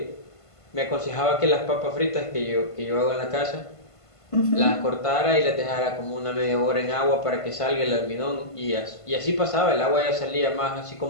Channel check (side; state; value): right; late; 1.5 ms